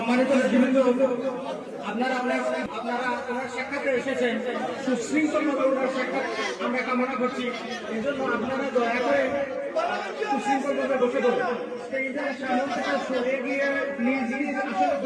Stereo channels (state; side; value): identical; both; correlation 1.00